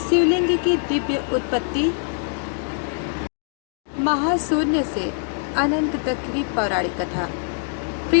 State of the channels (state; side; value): silent; right; 63 dB below the other